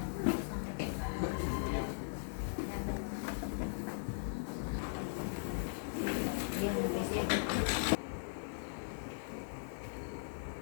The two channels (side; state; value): right; silent; 52 dB below the other